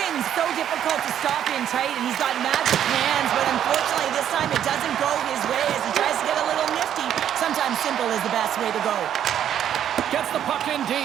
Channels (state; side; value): quieter; left; 10.0 dB